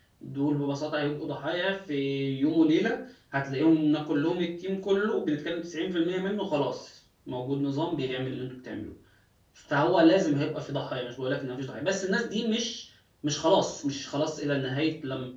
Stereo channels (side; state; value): both; identical; correlation 1.00